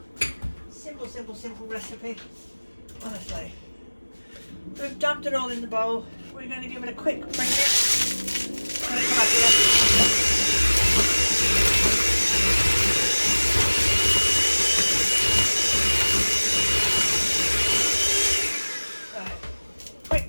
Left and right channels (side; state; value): both; inverted; correlation -1.00